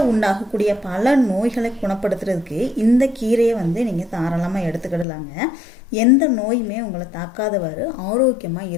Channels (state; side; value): drops out; right; at 5.1 s